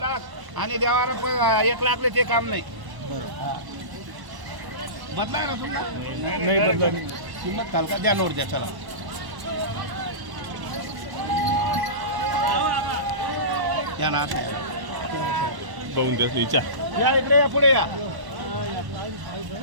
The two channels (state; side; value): late; left; 1.0 ms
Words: आणि देवाला 1 लाखले ते काम नाही बदलाय ना तुमचा नाही बदला किंमत काल का द्या नोट द्या चला या ना बघून त्याच विचार या इकडे या पुढे या